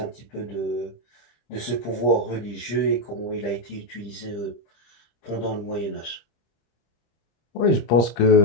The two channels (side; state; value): right; late; 26 ms